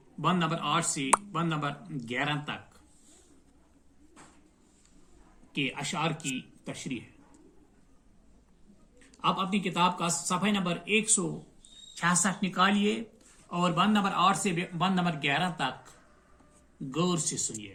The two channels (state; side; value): identical; both; correlation 1.00